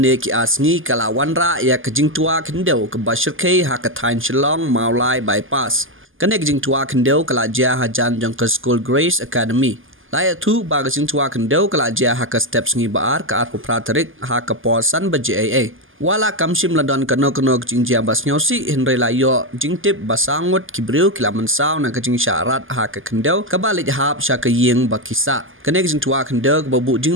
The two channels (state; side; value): late; left; 0.58 ms